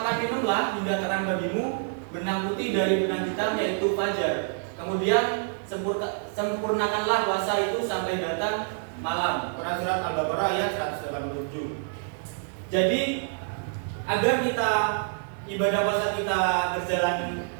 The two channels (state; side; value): silent; left; digital silence